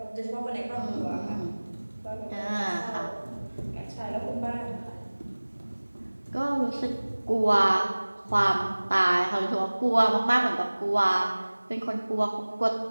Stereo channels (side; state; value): both; inverted; correlation -1.00